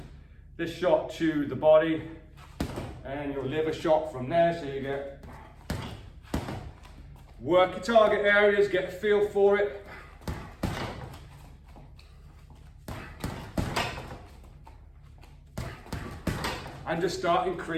this shot to the body, and your liver shot from there, so you get work your target areas, get a feel for it. And just start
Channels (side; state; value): both; identical; correlation 1.00